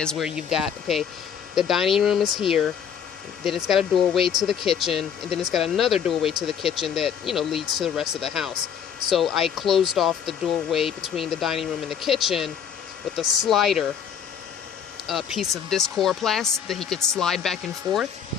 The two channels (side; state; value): right; quieter; 7.9 dB